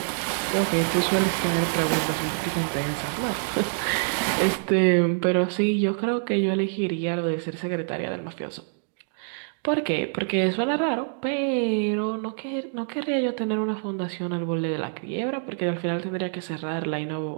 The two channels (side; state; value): left; silent; digital silence